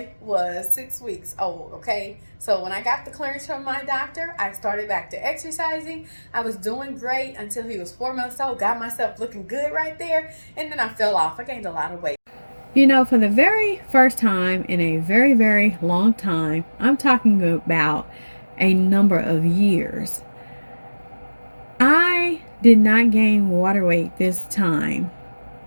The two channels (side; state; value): both; inverted; correlation -1.00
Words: was 6 weeks old, okay? So when I got the clearance from my doctor, I started back to exercising. I was doing great until he was 4 months old, got myself looking good right there, and then I fell off. I gained a lot of weight. You know, for the very first time in a very, very long time, I'm talking about a number of years, I did not gain water weight this time